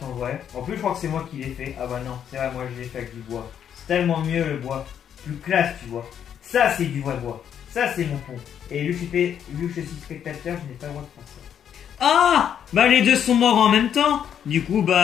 en vrai. En plus, je crois que c'est moi qui l'ai fait. Ah bah non, c'est vrai, moi je l'ai fait avec du bois. C'est tellement mieux le bois. Plus classe, tu vois. Ça, c'est du vrai bois. Ça, c'est mon pont. Et vu que je suis spectateur, je n'ai pas le droit de faire ça. Ah. Bah les deux sont morts en même temps. Du coup,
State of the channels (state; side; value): quieter; right; 8.9 dB